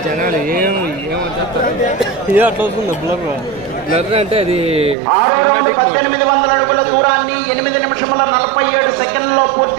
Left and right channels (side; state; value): left; drops out; at 5.0 s